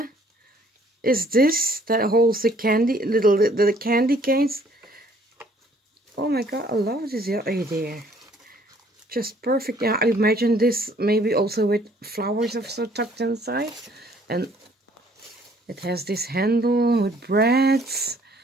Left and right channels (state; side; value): normal; both; correlation 0.60